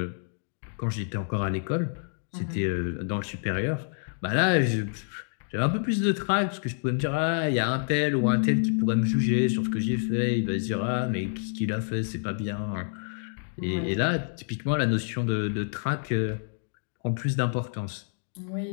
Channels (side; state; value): right; silent; digital silence